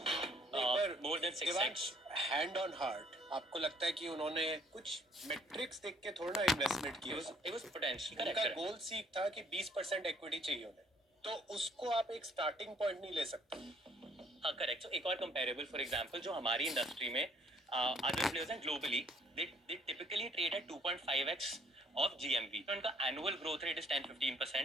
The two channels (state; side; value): normal; both; correlation 0.62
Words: more than 6x। Hand on heart आपको लगता है कि उन्होंने कुछ मेट्रिक्स देख के थोड़ा ना इन्वेस्टमेंट It किया? was potential. उनका Correct. गोल सीख था कि 20% इक्विटी चाहिए उन्हें, तो उसको आप एक स्टार्टिंग पॉइंट नहीं ले सकते। हाँ करेक्ट. So एक और कंपेरेबल फॉर एग्जांपल जो हमारी इंडस्ट्री में अदर प्लेयर्स हैं globally they typically trade at 2.5x of GMV. तो उनका annual growth rate is